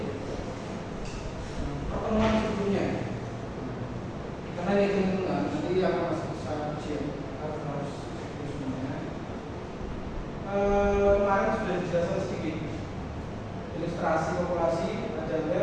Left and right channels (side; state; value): both; identical; correlation 1.00